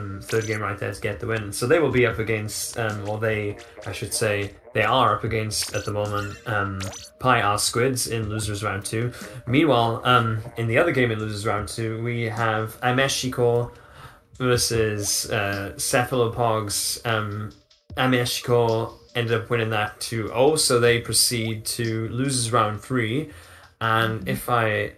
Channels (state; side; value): identical; both; correlation 1.00